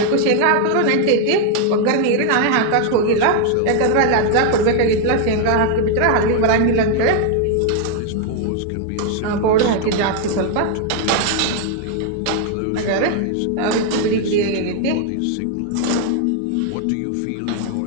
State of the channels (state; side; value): different; both; correlation 0.00